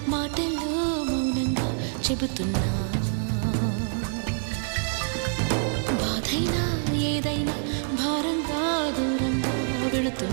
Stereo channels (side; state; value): left; silent; digital silence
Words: మాటల్లో మౌనంగా చెబుతున్నా, బాధైనా ఏదైనా భారంగా దూరంగా